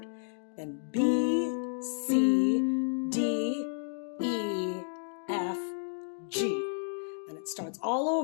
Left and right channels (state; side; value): silent; right; digital silence